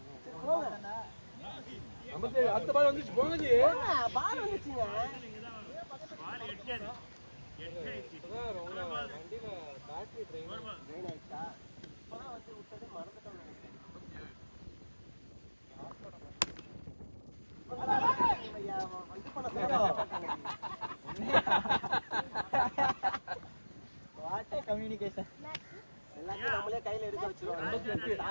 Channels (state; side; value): inverted; both; correlation -1.00